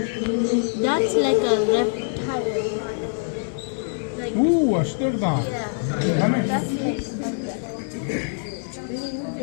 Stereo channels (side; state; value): right; silent; digital silence